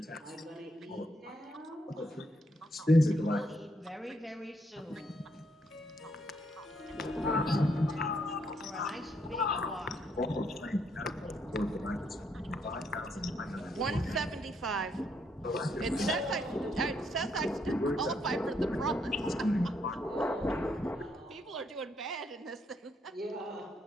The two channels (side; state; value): both; normal; correlation 0.74